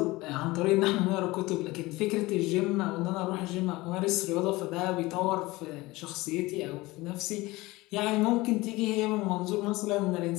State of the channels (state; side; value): quieter; right; 20.7 dB